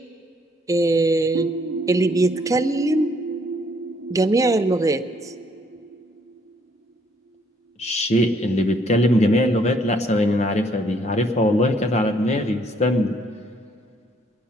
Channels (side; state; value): both; normal; correlation 0.67